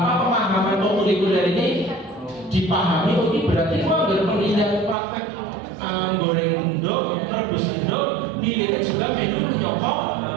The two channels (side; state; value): left; drops out; at 5.0 s